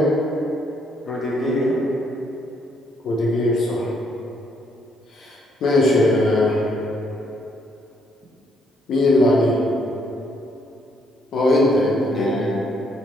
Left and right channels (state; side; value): normal; both; correlation 0.71